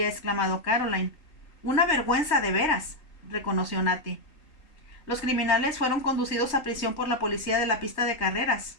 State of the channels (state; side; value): late; right; 3.2 ms